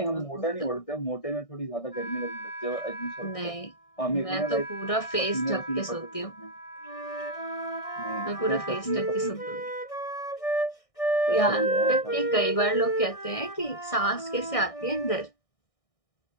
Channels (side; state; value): right; late; 1.6 ms